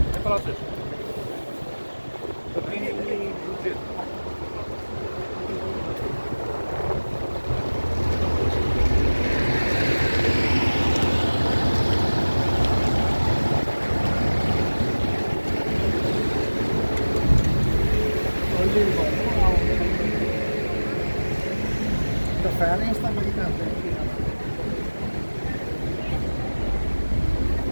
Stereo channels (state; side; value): inverted; both; correlation -1.00